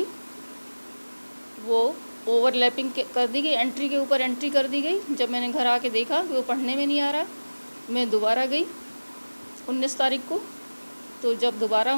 वो ओवरलैपिंग कर दी गई, एंट्री के ऊपर एंट्री कर दी गई। जब मैंने घर आके देखा कि वो पढ़ने में नहीं आ रहा, मैं दोबारा गई 19 तारीख को। तो जब दोबारा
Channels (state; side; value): inverted; both; correlation -1.00